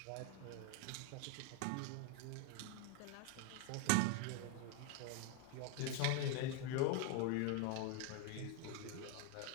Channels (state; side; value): different; both; correlation 0.01